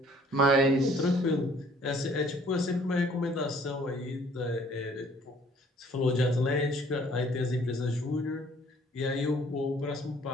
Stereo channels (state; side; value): normal; both; correlation 0.58